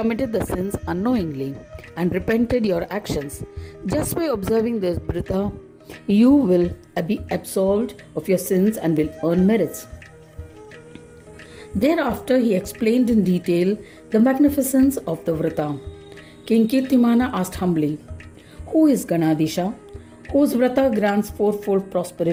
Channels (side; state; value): both; identical; correlation 1.00